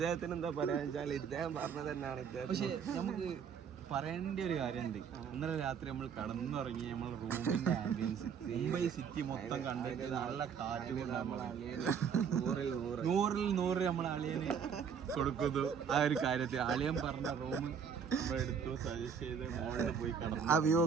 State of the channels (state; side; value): quieter; left; 7.0 dB